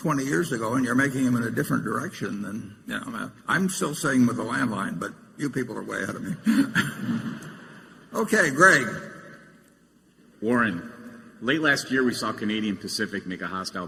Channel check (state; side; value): identical; both; correlation 1.00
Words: years ago, and you're making them in a different direction than, I'm still saying with the landline, but you people are way ahead of me. Okay, Greg. Warren, late last year we saw Canadian Pacific make a hostile